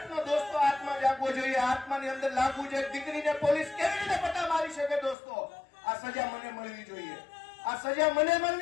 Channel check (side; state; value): right; drops out; at 5.2 s